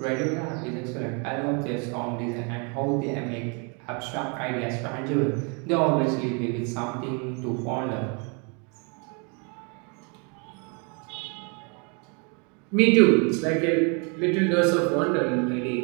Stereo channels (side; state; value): left; quieter; 34.7 dB